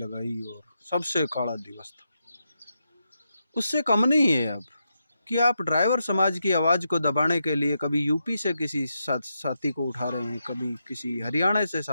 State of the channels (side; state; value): both; inverted; correlation -0.85